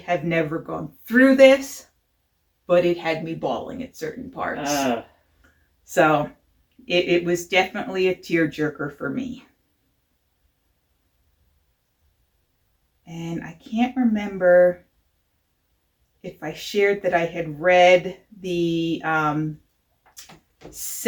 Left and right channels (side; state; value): both; identical; correlation 1.00